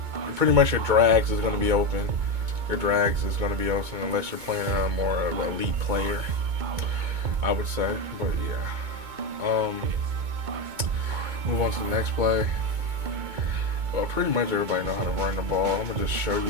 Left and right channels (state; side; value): late; left; 2.2 ms